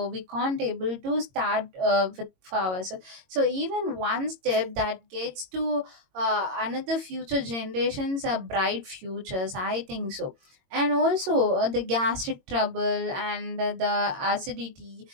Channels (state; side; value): late; left; 22 ms